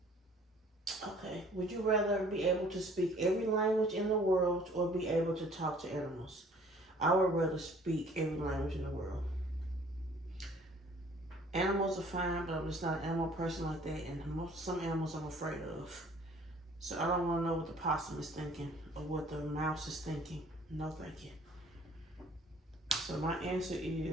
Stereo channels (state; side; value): normal; both; correlation 0.55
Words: Okay, would you rather be able to speak every language in the world or be able to talk to animals? I would rather speak every language in the world. Animals are fine, but I'm just not an animal person like that, and some animals I'm afraid of. So I don't want to know what the possum is thinking or what the mouse is thinking. No, thank you. So my answer